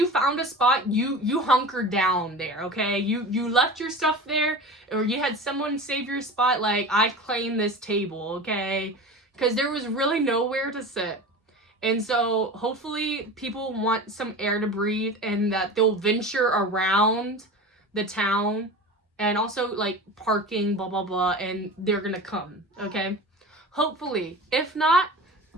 found a spot, you hunkered down there, okay? You left your stuff there, or you had someone save your spot, I claim this table, okay? Because there was really nowhere to sit. And so hopefully people want some air to breathe, and that they'll venture around the town, and also parking, blah blah blah, and they're gonna come, okay? Hopefully. If not,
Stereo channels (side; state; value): both; normal; correlation 0.33